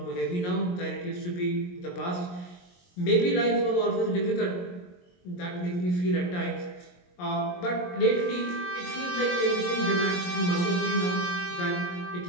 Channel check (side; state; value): right; late; 22 ms